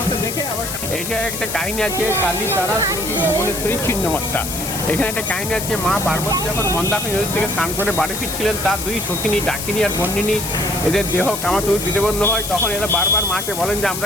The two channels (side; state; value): left; noise; hiss, 6 dB below the sound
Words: এটা একটা কাহিনী আছে কালী তারা ভুবনেশ্বরী ছিন্নমস্তা। এখানে একটা কাহিনী আছে, মা পার্বতী যখন মন্দাকিনী নদী থেকে স্নান করে বাড়ি ফিরছিলেন, তার দুই সখিনী ডাকিনী আর বন্দিনী এদের দেহ কামাতুর বিদেবন্ধ হয়। তখন এরা বারবার মাকে বলেন যে